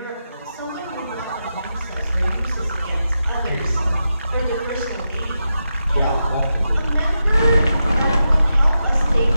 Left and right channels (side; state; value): both; inverted; correlation -0.88